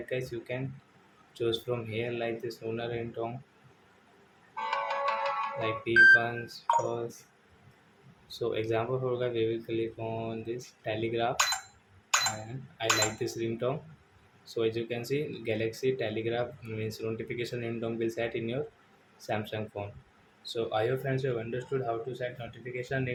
guys you can choose from here like this lunar ringtone like P1s first. So example for guys, we will click on this telegraph and I like this ringtone. So as you can see, Galaxy Telegraph means notification ringtone will set in your Samsung phone. So I hope friends you have understood how to set notification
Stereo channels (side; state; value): both; identical; correlation 1.00